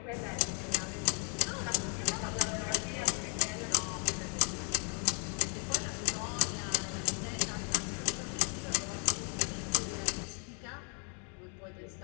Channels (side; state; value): right; quieter; 39.8 dB